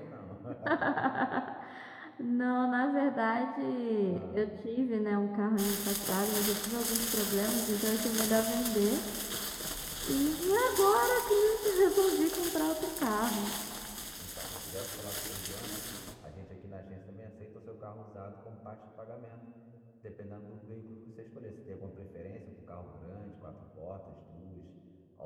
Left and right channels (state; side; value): identical; both; correlation 1.00